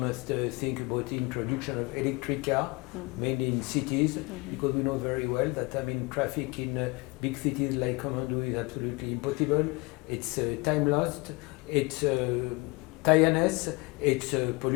think about the introduction of electric car, mainly in cities, because we know very well that traffic in big cities like Kathmandu is absolutely impossible. It's time lost, it's tiredness, it's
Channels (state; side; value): quieter; right; 26.1 dB